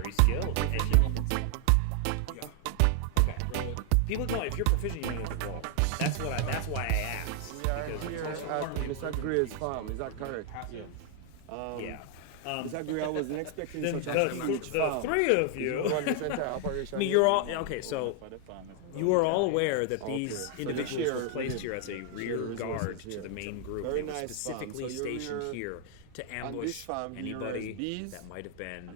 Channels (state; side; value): different; both; correlation 0.00